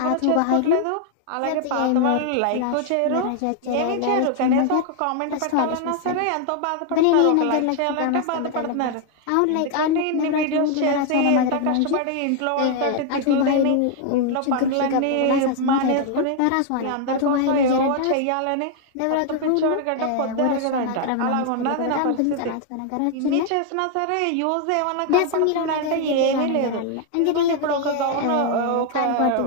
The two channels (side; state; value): both; different; correlation 0.00